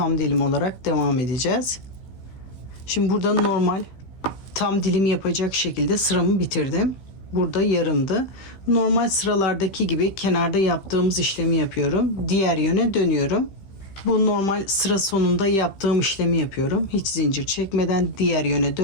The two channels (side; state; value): right; late; 15 ms